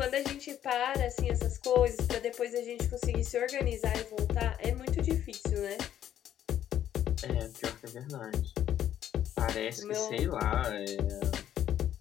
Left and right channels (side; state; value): right; quieter; 10.9 dB